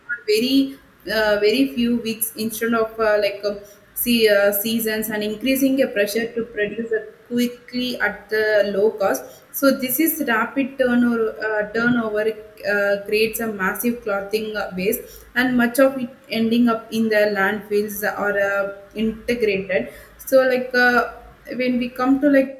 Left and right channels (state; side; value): identical; both; correlation 1.00